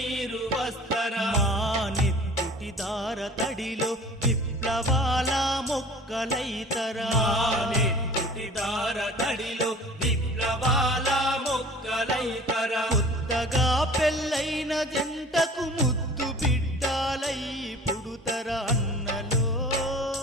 వస్తరా మా నెత్తుటి దార తడిలో విప్లవాల మొక్కలైతరా మానెత్తుటి దార తడిలో విప్లవాల మొక్కలైతరా కొత్తగా పెళ్ళైన జంటకు ముద్దు బిడ్డాలై పుడుతరా అన్నలో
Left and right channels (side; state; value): both; normal; correlation 0.45